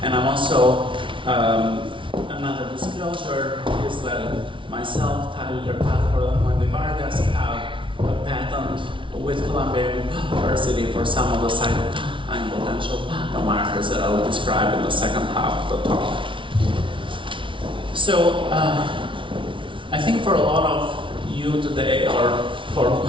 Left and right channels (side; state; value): left; late; 0.25 ms